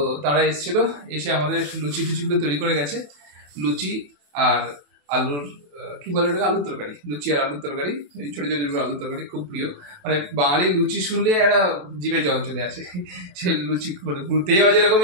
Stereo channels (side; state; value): left; late; 28 ms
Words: তারা এসেছিল, এসে আমাদের লুচি টুচিগুলো তৈরি করে গেছে। লুচি আর আলুর কি বলে ওটাকে, আলুর তরকারি। লুচি আর আলুর তরকারি, এই ছোটো ছোটো আলুর তরকারি খুব প্রিয়। মানে বাঙালির লুচি শুনলে একটা জিভে জল চলে আসে। সে লুচি মানে ঘুরতে যাওয়া যেরকম